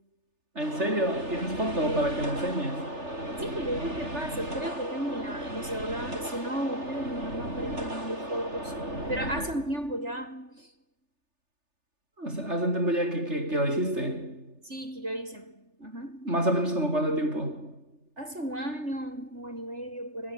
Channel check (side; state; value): left; late; 3.3 ms